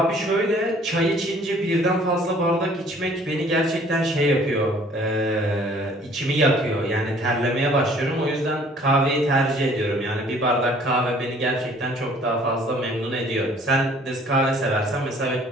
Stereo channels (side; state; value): both; normal; correlation 0.56